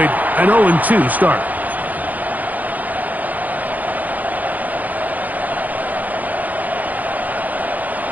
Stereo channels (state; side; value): late; left; 0.081 ms